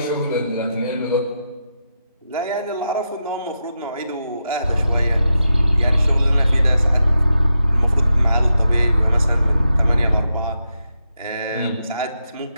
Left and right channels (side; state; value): both; inverted; correlation -0.86